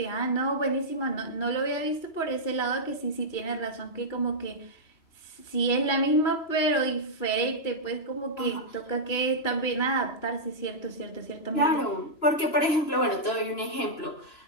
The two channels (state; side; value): late; right; 3.0 ms